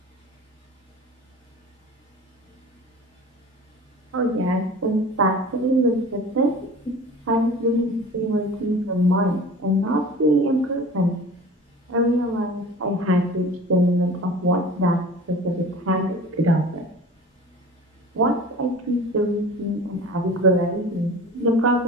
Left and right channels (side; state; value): both; normal; correlation 0.40